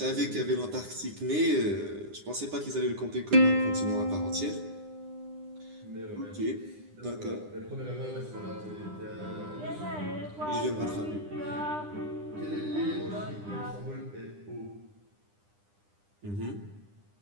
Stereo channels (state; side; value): late; left; 9.9 ms